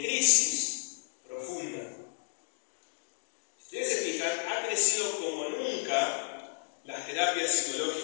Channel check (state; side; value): silent; right; digital silence